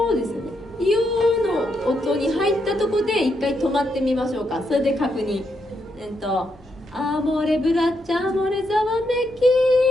すよね。よの音に入ったとこで一回止まってみましょうか。それで確認。アモレブラッチャ、アモレザワメ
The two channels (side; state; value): both; normal; correlation 0.80